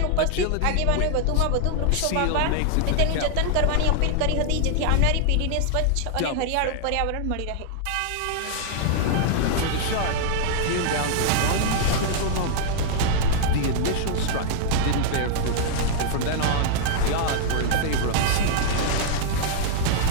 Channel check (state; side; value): different; both; correlation -0.01